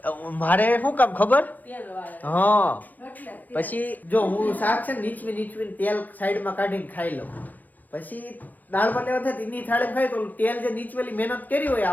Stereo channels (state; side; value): late; right; 0.083 ms